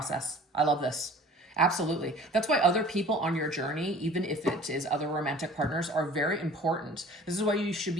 I love this. Absolutely. That's why other people on your journey, even if it is other romantic partners, are very important. This is why you should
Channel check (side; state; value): both; normal; correlation 0.47